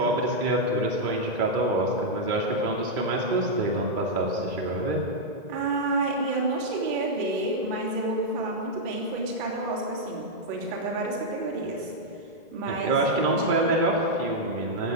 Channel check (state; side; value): late; left; 2.0 ms